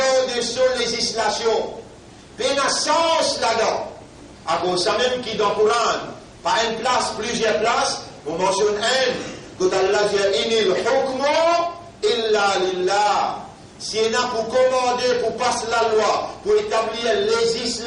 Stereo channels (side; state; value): both; identical; correlation 1.00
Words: de sa législation? Il y a un sens là-dedans. À cause ça même qui dans le Coran, pas une place, plusieurs places, on mentionne un, quand Allah dit inil hukmu illa lillah. Si on a pour commander, pour passer la loi, pour établir la